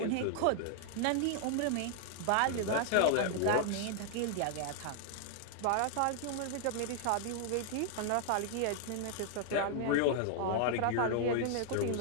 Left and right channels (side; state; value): both; different; correlation 0.00